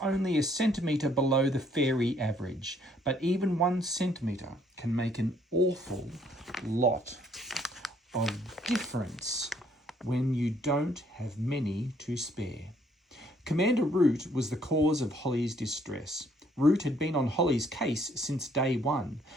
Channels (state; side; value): normal; both; correlation 0.66